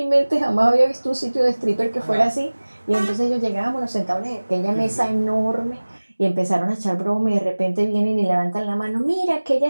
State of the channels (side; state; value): both; inverted; correlation -1.00